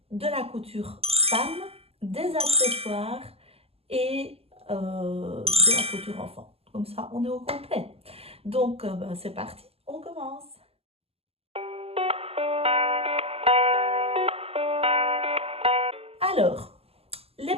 de la couture femme, des accessoires et de la couture enfant. Comme ça, on est au complet. Donc, ben, c'est parti, on commence. Alors, les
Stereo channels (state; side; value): late; left; 0.29 ms